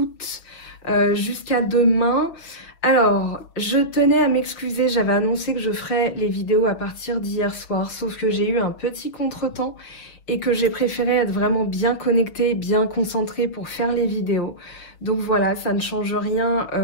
jusqu'à demain. Alors, je tenais à m'excuser, j'avais annoncé que je ferais les vidéos à partir d'hier soir, sauf que j'ai eu un petit contretemps et que j'ai préféré être vraiment bien connectée, bien concentrée pour faire les vidéos. Donc voilà, ça ne change rien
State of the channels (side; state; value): right; late; 6.4 ms